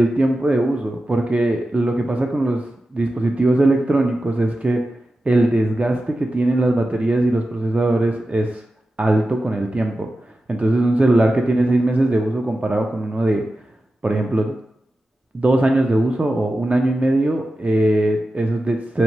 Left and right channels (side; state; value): both; normal; correlation 0.93